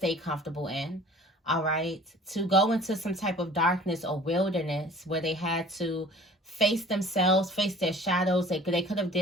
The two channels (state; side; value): normal; both; correlation 0.48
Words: comfortable in, all right? To go into some type of darkness or wilderness where they had to face themselves, face their shadows. They could have